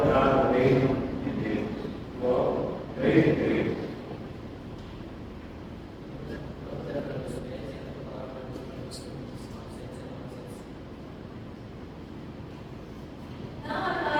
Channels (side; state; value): both; identical; correlation 1.00